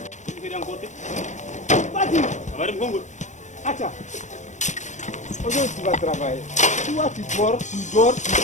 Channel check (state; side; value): late; right; 0.35 ms